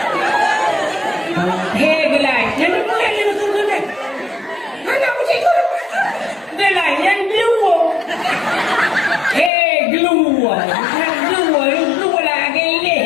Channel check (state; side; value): drops out; right; at 9.5 s